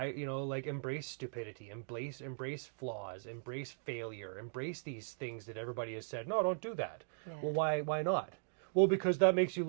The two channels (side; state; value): left; silent; digital silence